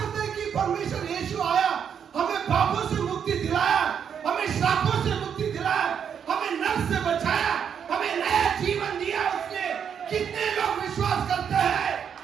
हैं कि परमेश्वर यीशु आया, हमें पापों से मुक्ति दिलाया, हमें श्रापों से मुक्ति दिलाया, हमें नरक से बचाया, हमें नया जीवन दिया उसने? कितने लोग विश्वास करते हैं?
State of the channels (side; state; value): left; quieter; 7.8 dB